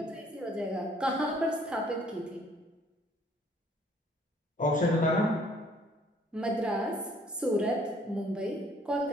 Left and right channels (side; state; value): both; normal; correlation 0.61